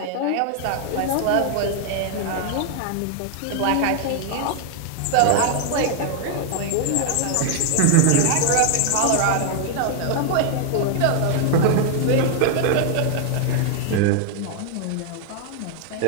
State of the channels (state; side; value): different; both; correlation 0.00